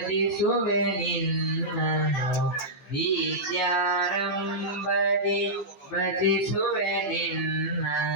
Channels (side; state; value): right; late; 14 ms